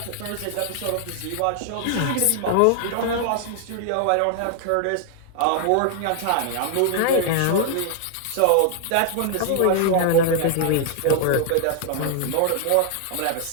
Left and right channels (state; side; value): different; both; correlation 0.00